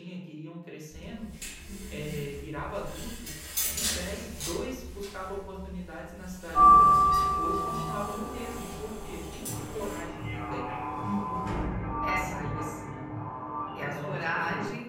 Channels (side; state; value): both; identical; correlation 1.00